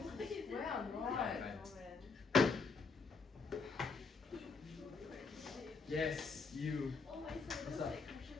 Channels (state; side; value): quieter; right; 4.6 dB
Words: Where I'm right. Yes, you. Oh my son, it What's looks up? like